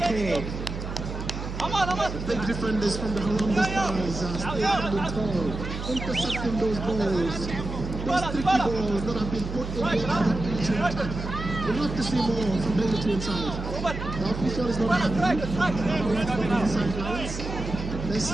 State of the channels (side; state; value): right; noise; hum, 6 dB below the sound